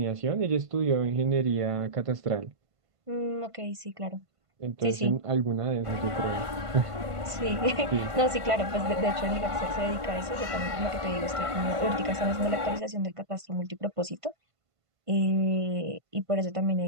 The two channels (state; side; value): late; left; 1.5 ms